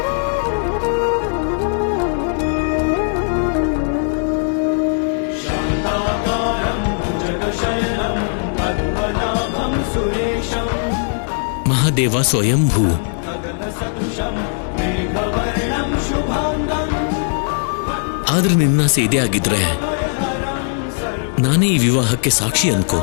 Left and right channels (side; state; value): right; silent; 67 dB below the other